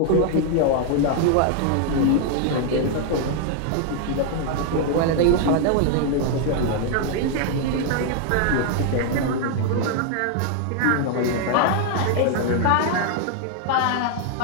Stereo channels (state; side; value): different; both; correlation 0.00